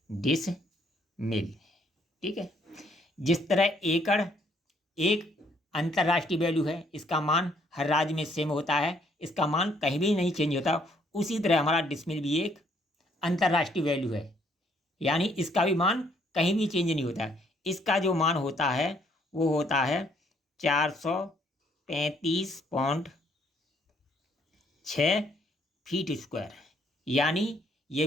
ठीक है। जिस तरह एकड़ एक अंतर्राष्ट्रीय वैल्यू है, इसका मान हर राज्य में सेम होता है, इसका मान कहीं भी नहीं चेंज होता, उसी तरह हमारा डिसमिल भी एक अंतर्राष्ट्रीय वैल्यू है। यानी इसका भी मान कहीं भी चेंज नहीं होता है। इसका जो मान होता है वो होता है 435.6 फीट स्क्वायर। यानी ये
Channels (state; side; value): normal; both; correlation 0.67